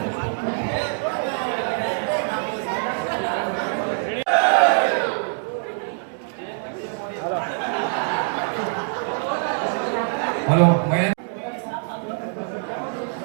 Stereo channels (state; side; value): silent; left; 63 dB below the other